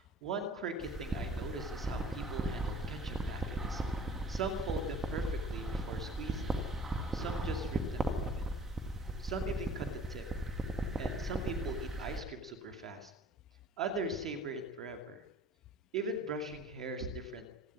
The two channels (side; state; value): both; normal; correlation 0.49